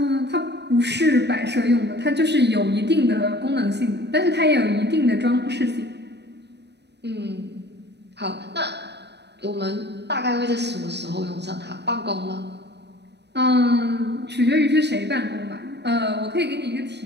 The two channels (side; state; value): left; late; 0.50 ms